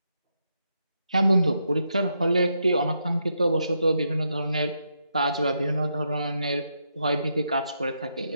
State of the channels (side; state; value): both; inverted; correlation -0.81